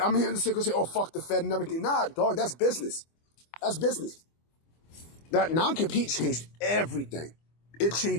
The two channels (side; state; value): right; late; 25 ms